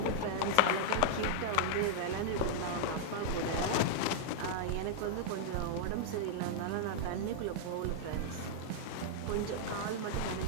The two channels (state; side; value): different; both; correlation -0.01